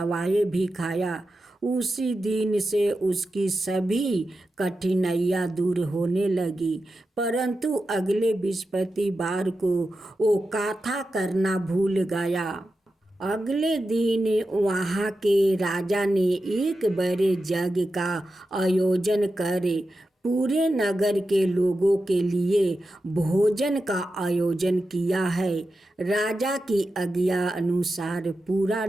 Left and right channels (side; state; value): both; normal; correlation 0.90